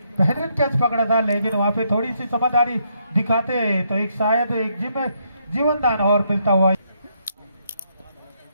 बेहतरीन कैच पकड़ा था, लेकिन वहां पे थोड़ी सी समझदारी दिखाते तो एक शायद एक जीवन दान और मिलता हुआ।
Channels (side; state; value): both; inverted; correlation -0.75